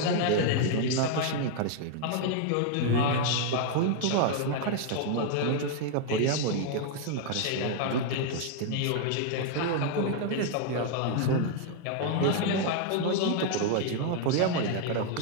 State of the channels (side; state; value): both; different; correlation 0.00